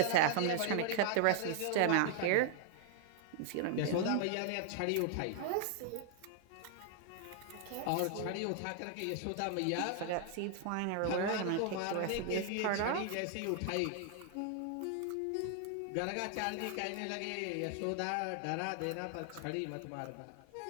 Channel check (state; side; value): different; both; correlation 0.00